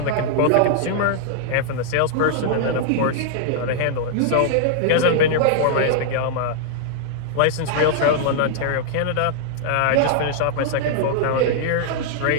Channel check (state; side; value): different; both; correlation -0.01